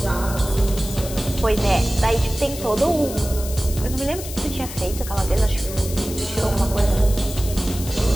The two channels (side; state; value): left; noise; hiss, 11 dB below the sound